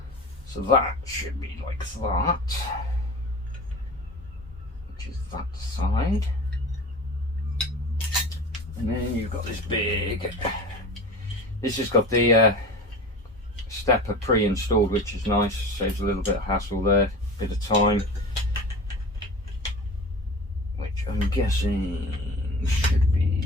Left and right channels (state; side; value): normal; both; correlation 0.35